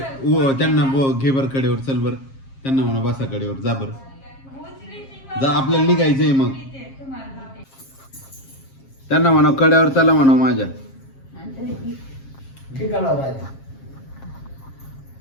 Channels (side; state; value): right; late; 7.4 ms